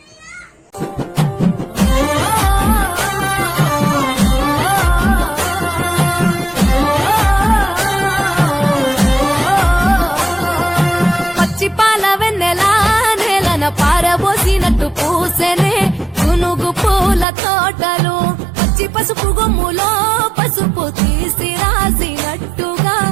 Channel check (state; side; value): drops out; left; at 17.2 s